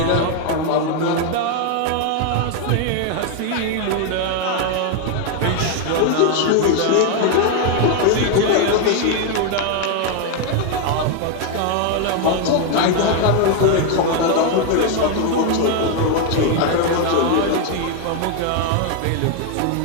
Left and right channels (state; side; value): different; both; correlation 0.01